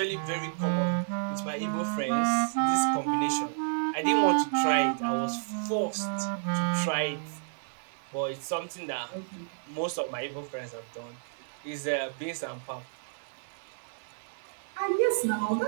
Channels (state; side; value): silent; left; digital silence